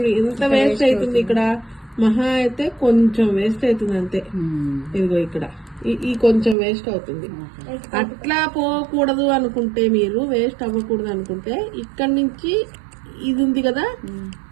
ఎంత వేస్ట్ అవుతుంది ఇక్కడ, మహా అయితే కొంచెం వేస్ట్ అవుతుంది అంతే. ఇదిగో ఇక్కడ ఈ కొంచెం వేస్ట్ అవుతుంది. అట్లా పోకూడదు అనుకుంటే, మీరు వేస్ట్ అవ్వకూడదు అనుకుంటే ఇక్కడ నుంచి ఇది ఉంది కదా,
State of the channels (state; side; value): drops out; left; at 6.6 s